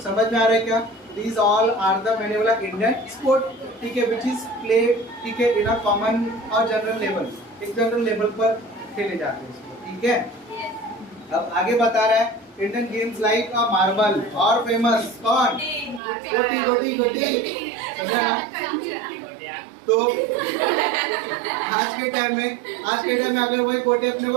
समझ में आ रहा है क्या। These all are the, मैंने बोला इंडियन स्पोर्ट, ठीक है, which is played, ठीक है, इन अ कॉमन और जनरल लेवल, एक जनरल लेवल पर खेले जाते हैं इसको, ठीक है। अब आगे बता रहा है इंडियन गेम्स लाइक अ मार्बल और फेमस कौन, गोटी गोटी गोटी, समझा ना। तो आज के टाइम में अगर वही गोटी अपने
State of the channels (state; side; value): drops out; left; at 16.0 s